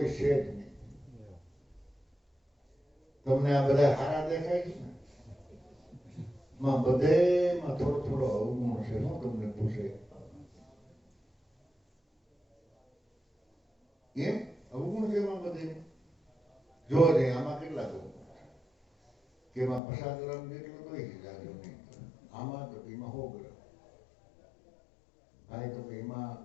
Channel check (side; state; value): right; drops out; at 19.8 s